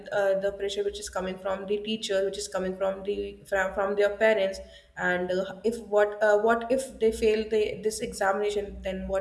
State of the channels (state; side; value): identical; both; correlation 1.00